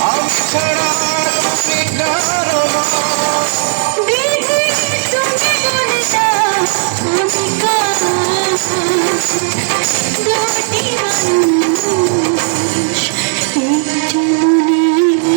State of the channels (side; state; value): left; silent; digital silence